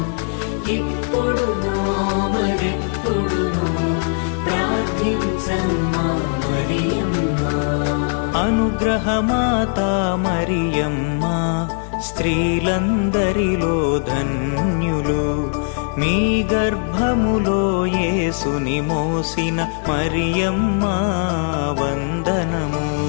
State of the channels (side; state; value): right; silent; 58 dB below the other